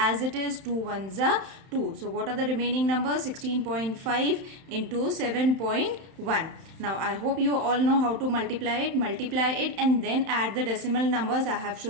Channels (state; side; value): late; left; 31 ms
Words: it is, 2 1s are 2. So what are the remaining numbers? 16.5 into 7.1. Now I hope you all know how to multiply it. Multiply it and then add the decimal numbers. I have